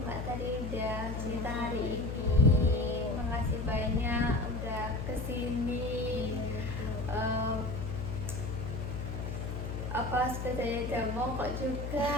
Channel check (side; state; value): left; noise; hum, 4 dB below the sound